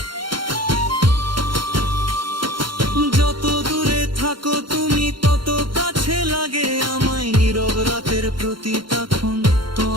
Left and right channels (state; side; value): late; left; 0.73 ms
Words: যত দূরে থাকো তুমি তত কাছে লাগে আমায়, নীরব রাতের প্রতি তখন